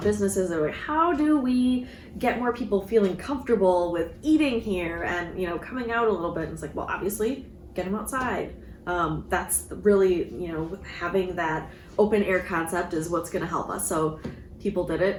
businesses. They're like, how do we get more people feeling comfortable with eating here and, coming out a little bit? And it's like, well, obviously, get them outside. That's really, having that open air concept is what's going to help us. So people did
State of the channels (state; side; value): identical; both; correlation 1.00